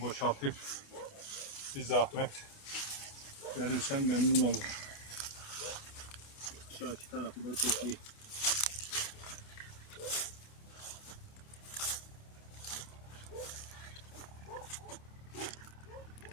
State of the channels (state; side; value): late; right; 27 ms